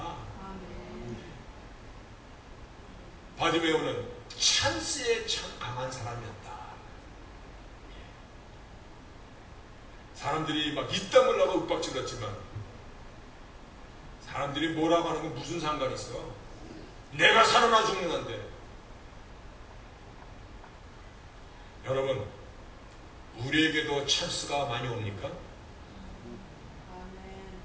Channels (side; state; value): both; identical; correlation 1.00